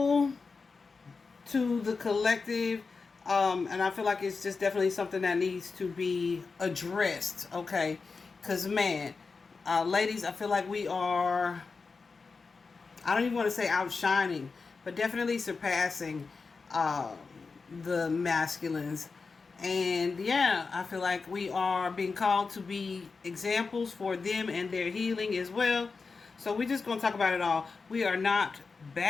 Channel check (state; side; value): quieter; right; 4.5 dB